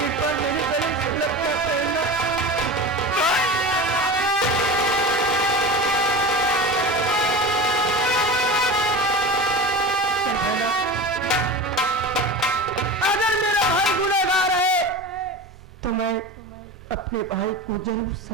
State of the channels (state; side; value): normal; both; correlation 0.29